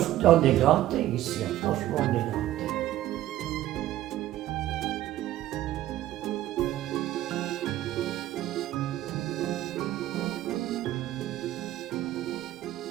on est gâtés ici, franchement, on est gâtés.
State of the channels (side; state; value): left; quieter; 14.1 dB